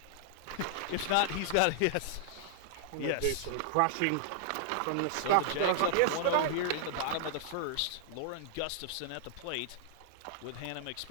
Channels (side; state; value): both; different; correlation -0.01